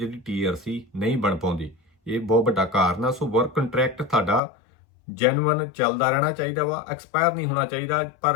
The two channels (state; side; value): drops out; right; at 4.4 s